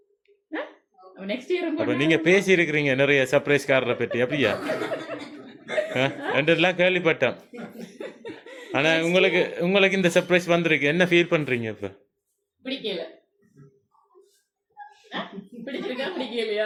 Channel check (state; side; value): identical; both; correlation 1.00